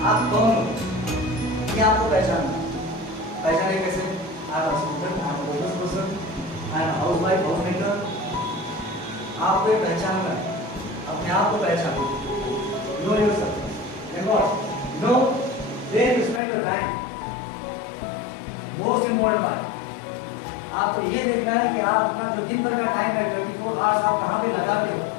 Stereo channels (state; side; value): drops out; right; at 16.4 s